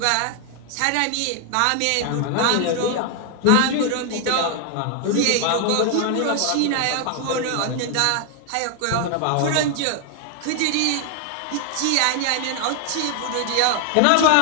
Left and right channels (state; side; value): different; both; correlation 0.00